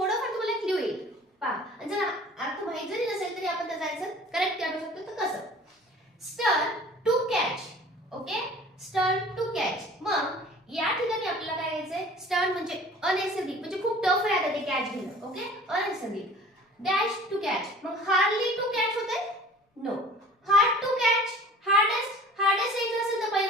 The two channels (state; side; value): normal; both; correlation 0.46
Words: तुम्हाला clue येईल. पहा, जर अर्थ माहिती जरी नसेल तरी आपण त्याचा आन्सर करेक्ट काढू शकतो. तर कसं? स्टर